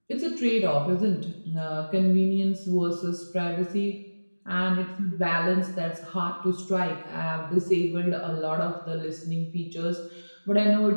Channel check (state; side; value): inverted; both; correlation -1.00